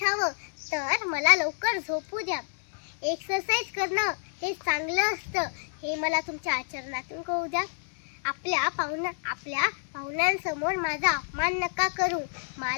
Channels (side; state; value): right; silent; digital silence